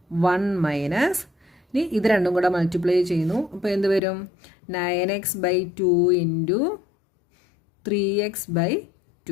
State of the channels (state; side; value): drops out; right; at 4.0 s